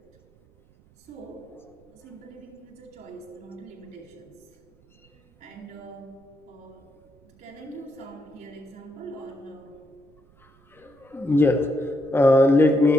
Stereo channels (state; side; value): noise; right; rumble, 30 dB below the sound